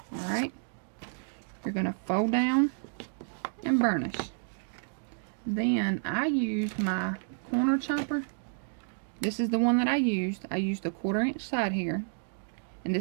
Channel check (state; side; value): silent; left; digital silence